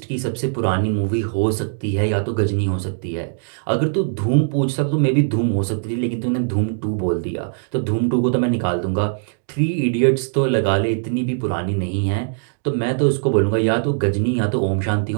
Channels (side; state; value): left; silent; digital silence